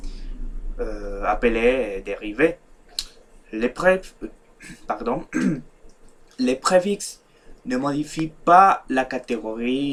appelé dérivé. Les, pardon, les préfixes ne modifient pas la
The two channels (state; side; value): identical; both; correlation 1.00